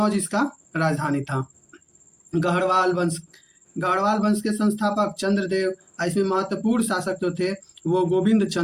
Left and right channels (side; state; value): both; identical; correlation 1.00